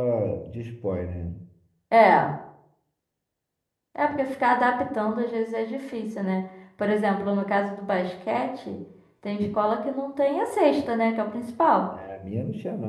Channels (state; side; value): identical; both; correlation 1.00